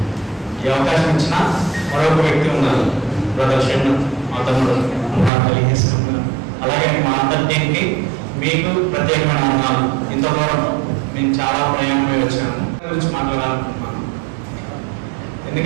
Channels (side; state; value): left; drops out; at 5.3 s